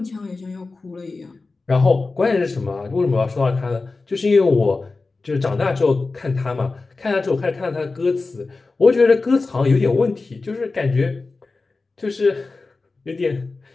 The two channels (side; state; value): right; quieter; 3.7 dB